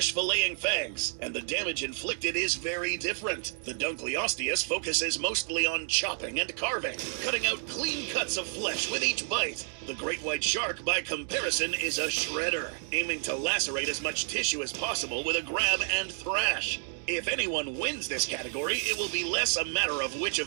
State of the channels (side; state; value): left; silent; 58 dB below the other